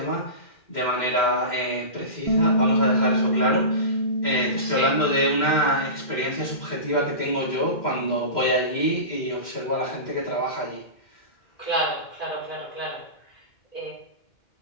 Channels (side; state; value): right; late; 2.1 ms